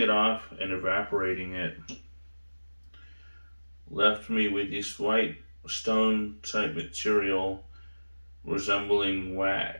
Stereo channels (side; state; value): both; inverted; correlation -1.00